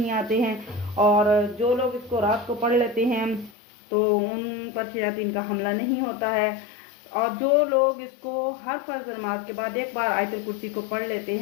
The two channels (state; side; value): drops out; right; at 3.5 s